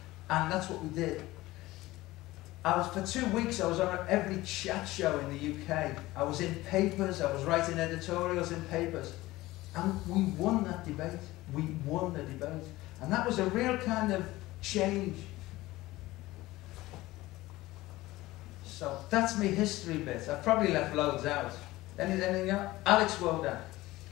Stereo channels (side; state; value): right; quieter; 18.2 dB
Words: And that's what we did. For 2 weeks, I was on every chat show in the UK. I was in papers, I was writing editorials in papers. And we won that debate. We won the debate. And that was a real kind of change. So that's my history bit. I've probably left loads out. Anything else? Alex Wodak.